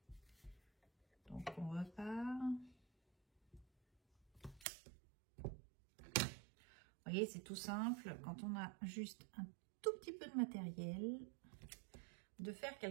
Donc, on repart. Vous voyez, c'est tout simple. Quand on a juste un tout petit peu de matériel, de faire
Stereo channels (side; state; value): left; drops out; at 4.7 s